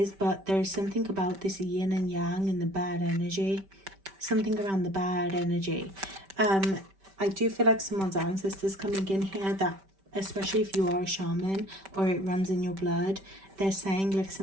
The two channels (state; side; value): late; left; 5.2 ms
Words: but there's something about this yin and yang and the bad energy, something around the bad energy. I do feel like someone's ancestors coming in here, that especially if you are a shaman or it runs in your blood, they're saying like